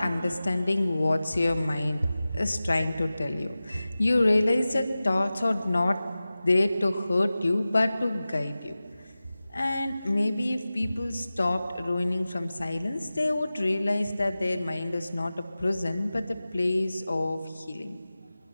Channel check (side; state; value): both; inverted; correlation -0.96